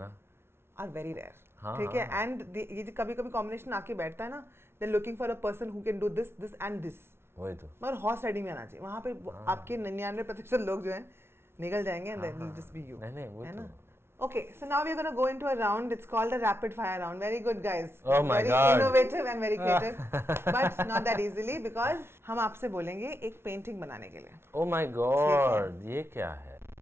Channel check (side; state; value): left; late; 0.12 ms